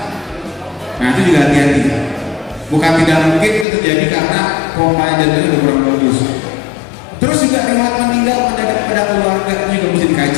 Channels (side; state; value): right; drops out; at 3.7 s